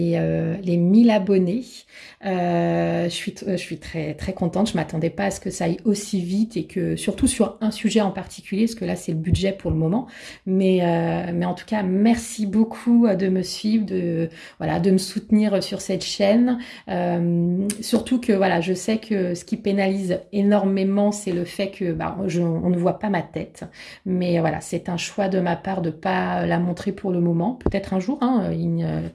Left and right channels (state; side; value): identical; both; correlation 1.00